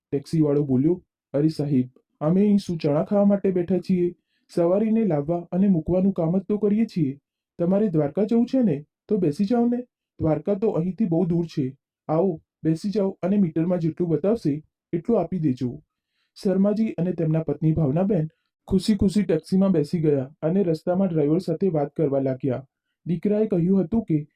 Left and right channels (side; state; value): both; identical; correlation 1.00